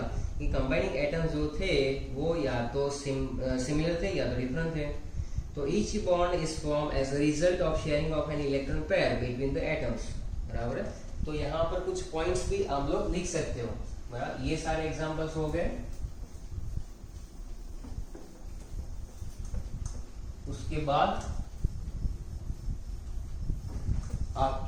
कि कंबाइनिंग एटम्स जो थे वो या तो सिमिलर थे या तो डिफरेंट थे। तो each bond is form as a result of sharing of an electron pair between the atoms, बराबर है। तो यहाँ पर कुछ पॉइंट्स भी आप लोग लिख सकते हो, बराबर। ये सारे एग्जांपल्स हो गए। उसके बाद आप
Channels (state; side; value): identical; both; correlation 1.00